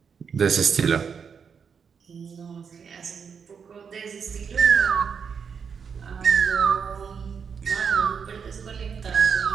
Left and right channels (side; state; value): left; quieter; 6.4 dB